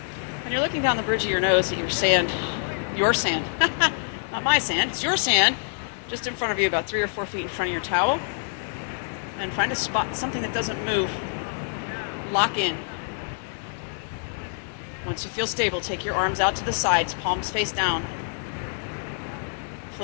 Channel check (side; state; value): right; silent; digital silence